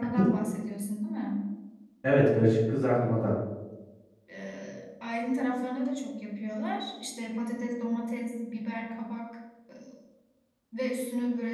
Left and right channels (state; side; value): identical; both; correlation 1.00